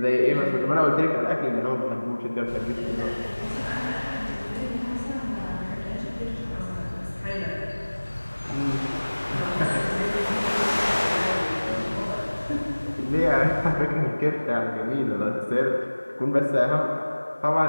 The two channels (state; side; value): inverted; both; correlation -1.00